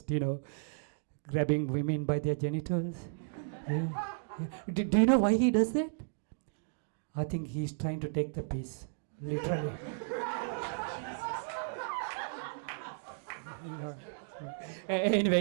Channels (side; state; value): left; silent; digital silence